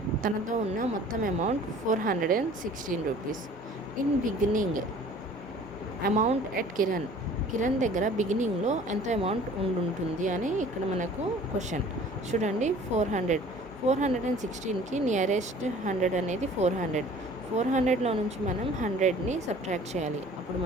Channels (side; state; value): both; normal; correlation 0.49